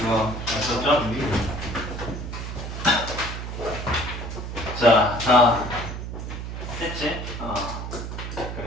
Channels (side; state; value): right; noise; hum, 6 dB below the sound